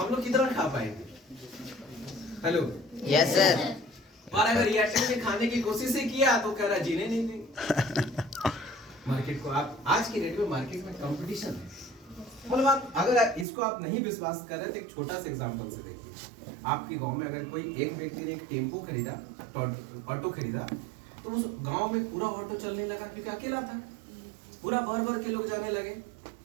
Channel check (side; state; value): left; drops out; at 13.5 s